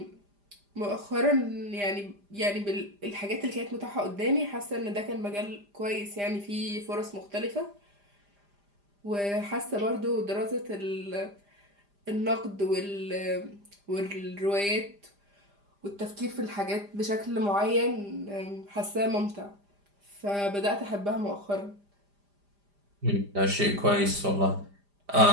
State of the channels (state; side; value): late; left; 5.0 ms